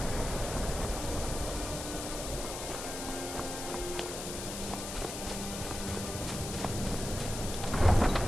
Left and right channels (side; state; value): left; noise; hiss, 7 dB below the sound